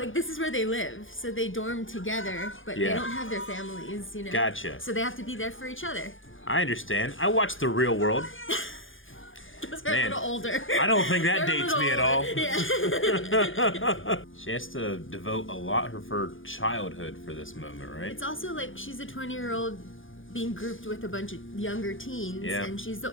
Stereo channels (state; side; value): late; right; 0.58 ms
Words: like this is where they live, so they dorm together, but they don't have their families, you know? Gotcha. So they have to be there for each other. I understand. I watched The Real World. Because they're a little older. I don't think that dates me at all. Yeah. She has to devote a lot of her childhood for this moment, right? It's also like she's a 20-year-old being grouped with a bunch of younger teens, and she's the